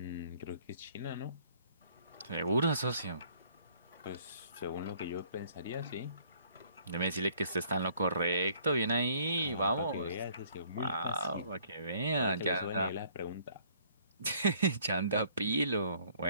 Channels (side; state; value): both; inverted; correlation -0.61